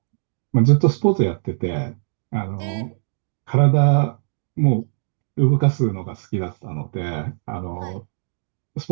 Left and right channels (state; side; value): silent; left; digital silence